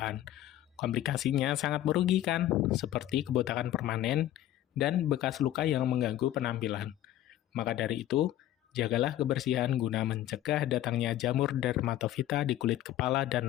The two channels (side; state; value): right; quieter; 13.3 dB